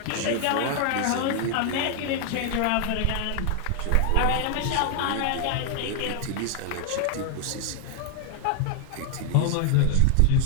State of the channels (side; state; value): both; different; correlation 0.00